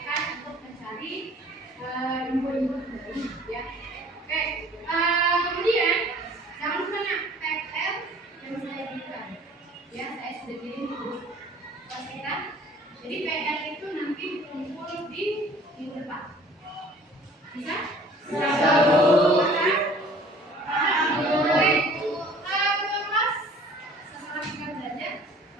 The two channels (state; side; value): normal; both; correlation 0.51